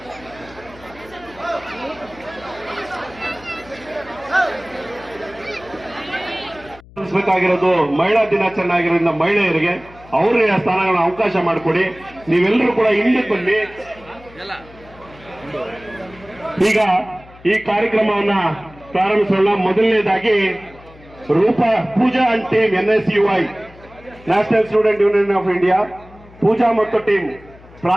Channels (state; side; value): noise; left; hum, 22 dB below the sound